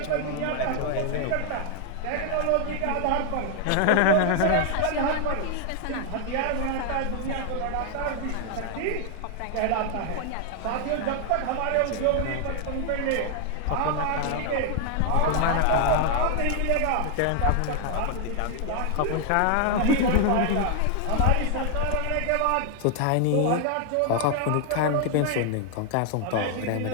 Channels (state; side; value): different; both; correlation 0.00